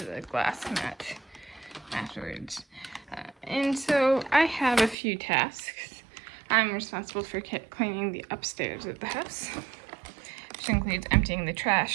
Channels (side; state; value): left; drops out; at 5.0 s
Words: glass mat afterwards. And so I have a few tasks. I'm responsible for cleaning the upstairs of the house, which includes emptying the